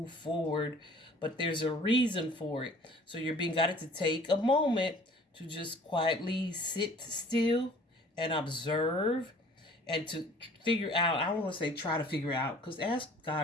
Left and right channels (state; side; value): normal; both; correlation 0.51